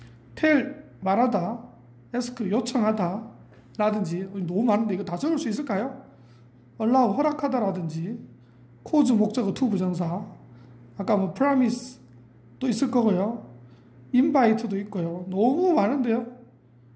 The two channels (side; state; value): both; identical; correlation 1.00